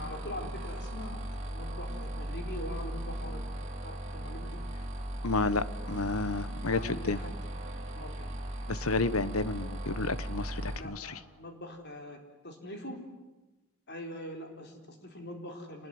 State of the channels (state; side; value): normal; both; correlation 0.26